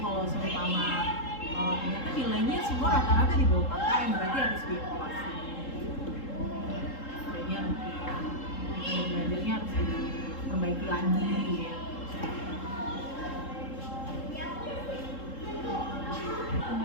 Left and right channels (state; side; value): late; right; 3.7 ms